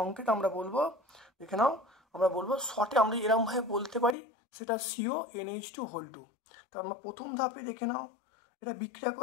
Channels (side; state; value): right; drops out; at 4.2 s